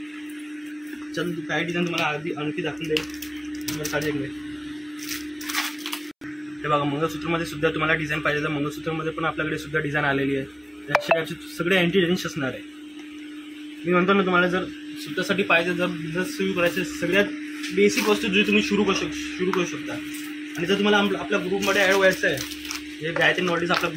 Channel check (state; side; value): identical; both; correlation 1.00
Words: चल काय डिझाईन तुम्हाला आणखी दाखवून देईल साडेकडे. हे बघा मंगळसूत्रमध्ये सुद्धा तुम्हाला डिझाईन पाहिजे तर मंगळसूत्रमध्ये पण आपल्याकडे सुद्धा डिझाईन आलेली आहे. त्याचे सगळे अँटी रेंज असणार आहे. मी म्हणतो ना तुम्हाला जर स्वतःसाठी पाहिजे, जर बिझनेस सुरू करायचे, सगळ्यात बेसिक वस्तू जी तुम्ही सुरू करू शकता. आणि जर तुम्हाला आपल्या ग्रुपमध्ये ॲड व्हायचं आहे, हे गायत्री नॉलेज आपला